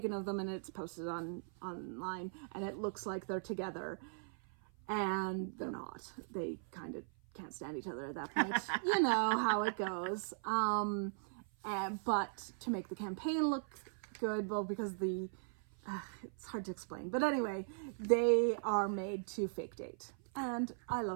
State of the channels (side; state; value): left; silent; 52 dB below the other